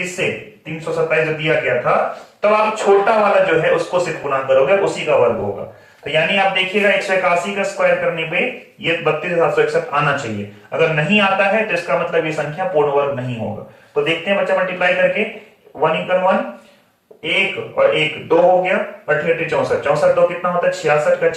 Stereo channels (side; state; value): both; identical; correlation 1.00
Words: 327 जो दिया गया था, तब आप छोटा वाला जो है उसको सिर्फ गुणा करोगे, उसी का वर्ग होगा। तो यानी आप देखिएगा 181 का स्क्वायर करने पे ये 32,761 आना चाहिए। अगर नहीं आता है तो इसका मतलब ये संख्या पूर्ण वर्ग नहीं होगा। तो देखते हैं बच्चा मल्टीप्लाई करके, 1 × 1 1 और 1 2 हो गया, 8 8 64, 64 2 कितना होता है 66 का